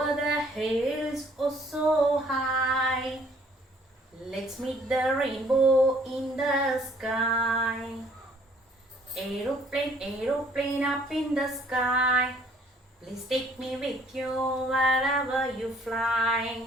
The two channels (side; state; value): both; normal; correlation 0.60